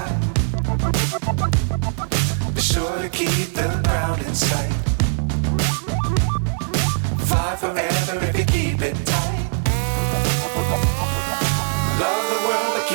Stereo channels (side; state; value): left; silent; digital silence